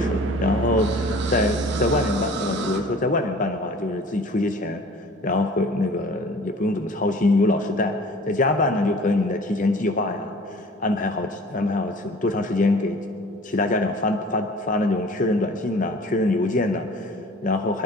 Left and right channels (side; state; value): both; normal; correlation 0.47